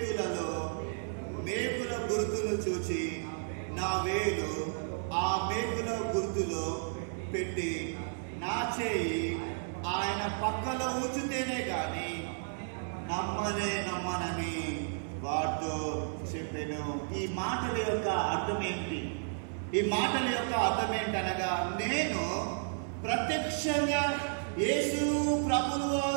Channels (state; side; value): silent; left; 56 dB below the other